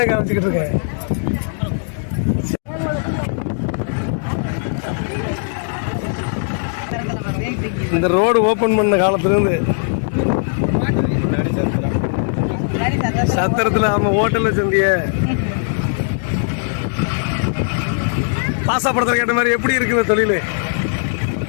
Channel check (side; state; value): right; silent; digital silence